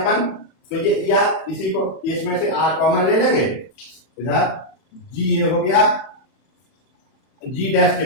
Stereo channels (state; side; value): late; right; 31 ms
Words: तो ये या इसी को इसमें से आर कॉमन ले लेंगे, इधर G ये हो गया G डैश के